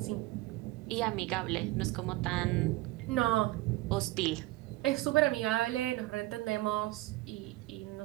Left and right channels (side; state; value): left; quieter; 18.8 dB